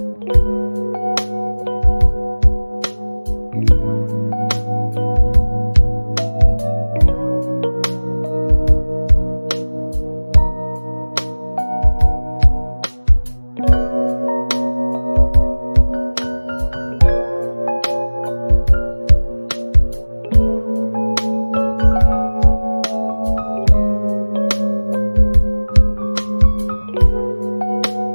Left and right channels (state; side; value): inverted; both; correlation -1.00